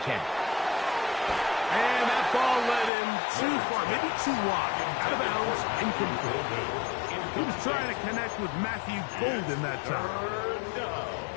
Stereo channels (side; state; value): right; drops out; at 2.9 s